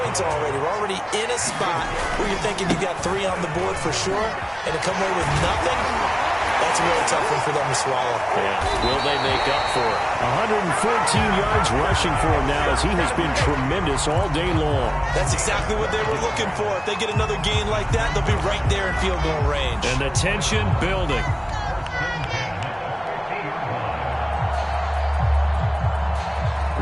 already. We're already in a spot where you're thinking you got 3 on the board for sure, and to come away with nothing, that's a really tough one for them to swallow. Yeah. Will they make up for it? 114 yards rushing for him now as he has been tremendous all day long. That's exactly what they were looking for. If they get another gain like that, they'll be right there in field goal range. And the tension building.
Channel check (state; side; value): identical; both; correlation 1.00